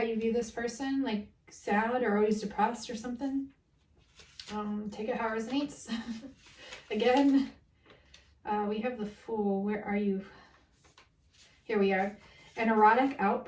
you view this person, like sad or always depressed or something. Take it how it resonates. Again, we have the Fool. Where are you? Here we are. An erotic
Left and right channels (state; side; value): identical; both; correlation 1.00